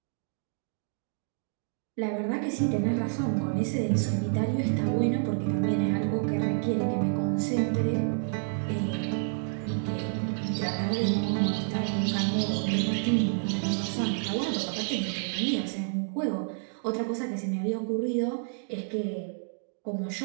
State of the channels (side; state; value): left; silent; digital silence